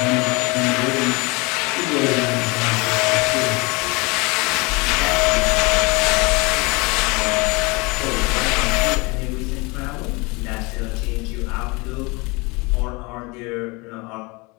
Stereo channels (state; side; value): quieter; right; 26.7 dB